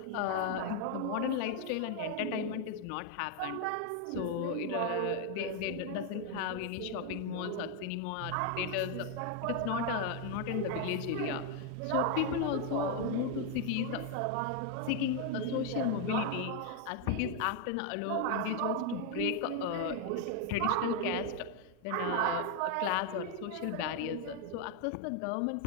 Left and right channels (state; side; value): different; both; correlation 0.01